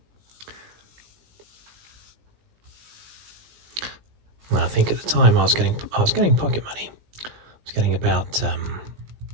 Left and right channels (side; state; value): left; late; 18 ms